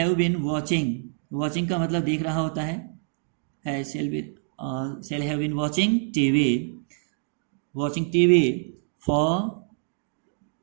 been watching का मतलब देख रहा होता है। Shall have been watching TV for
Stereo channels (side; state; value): left; silent; digital silence